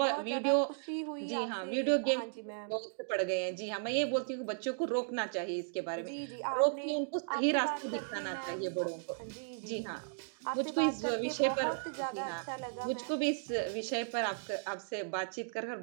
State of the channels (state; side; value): silent; left; digital silence